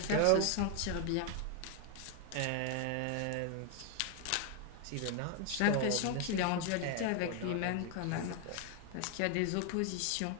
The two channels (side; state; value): both; different; correlation 0.01